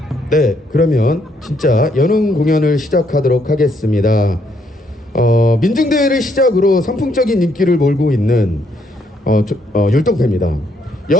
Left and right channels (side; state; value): both; normal; correlation 0.72